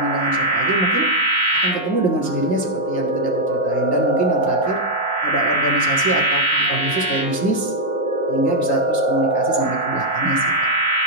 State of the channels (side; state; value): right; late; 5.7 ms